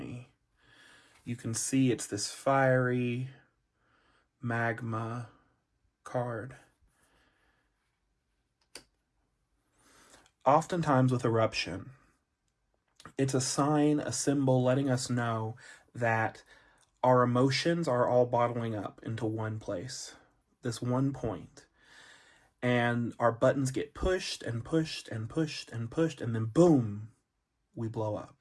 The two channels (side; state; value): both; identical; correlation 1.00